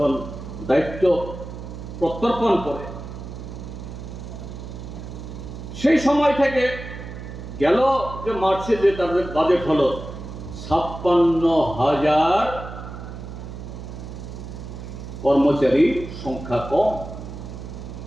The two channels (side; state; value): right; noise; hum, 10 dB below the sound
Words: দায়িত্ব প্রত্যর্পণ করে, সেই সময় থেকে গেল যে মার্চে যে তাদের বাজেট হলো 56,000 কর্মচারী সংখ্যা কম।